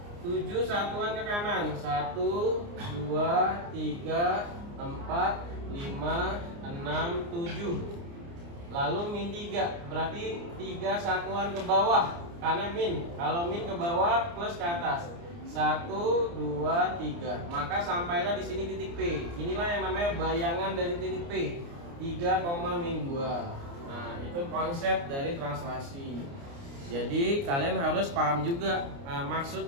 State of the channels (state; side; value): late; left; 29 ms